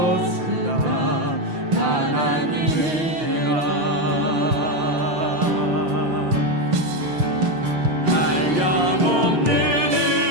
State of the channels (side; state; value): left; late; 6.4 ms